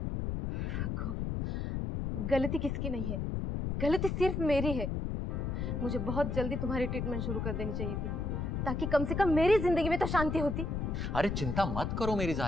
गलती किसकी नहीं है, गलती सिर्फ मेरी है। मुझे बहुत जल्दी तुम्हारी ट्रीटमेंट शुरू कर देनी चाहिए थी, ताकि कम से कम मेरी जिंदगी में तो शांति होती। अरे चिंता मत करो मेरी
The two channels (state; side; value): noise; left; rumble, 2 dB below the sound